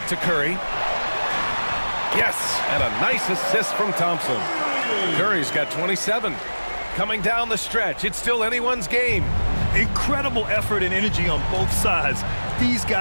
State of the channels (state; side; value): inverted; both; correlation -1.00